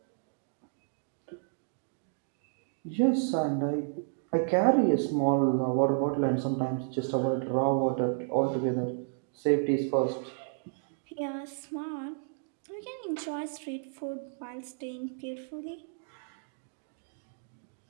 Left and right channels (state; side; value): silent; left; digital silence